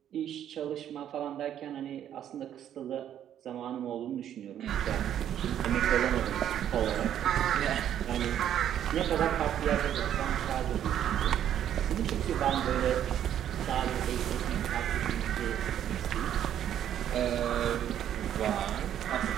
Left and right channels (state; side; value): quieter; left; 10.4 dB